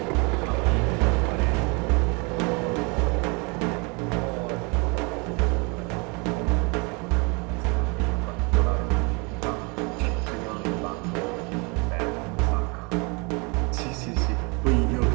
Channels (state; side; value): quieter; left; 30.7 dB